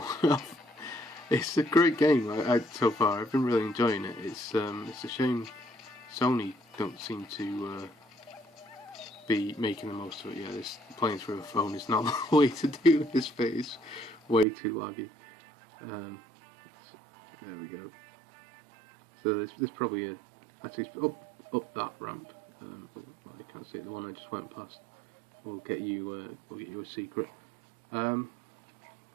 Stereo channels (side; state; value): left; drops out; at 14.5 s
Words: off. It's a great game so far. I've been really enjoying it. It's a shame Sony don't seem to be making the most of it. Yeah, this playing through a phone is not the way to do this bit. It's way too laggy. There we go. So there's probably actually up that ramp. Well, I can't see it. The one I just went past will get you a secret. So